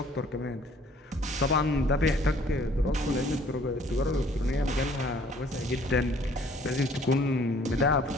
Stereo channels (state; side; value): normal; both; correlation 0.58